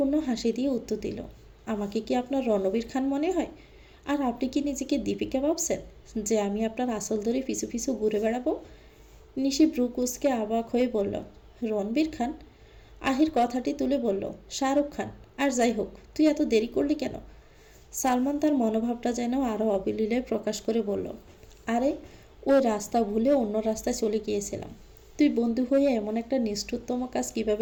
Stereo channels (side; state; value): both; identical; correlation 1.00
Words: হাসি দিয়ে উত্তর দিল, আমাকে কি আপনার রণবীর খান মনে হয়? আর আপনি কি নিজেকে দীপিকা ভাবছেন যে আমি আপনার আসল ধরে পিছু পিছু ঘুরে বেড়াবো? নিশি ভ্রু কুঁচকে অবাক হয়ে বলল, রণবীর খান? আহির কথাটি তুলে বলল, শাহরুখ খান। আর যাই হোক, তুই এত দেরি করলি কেন? সালমান তার মনোভাবটা যেন আরও অবিলীলায় প্রকাশ করে বলল, আরে ওই রাস্তা ভুলে অন্য রাস্তায় চলে গিয়েছিলাম। তুই বন্ধু হয়ে এমন একটা নিষ্ঠুরতম কাজ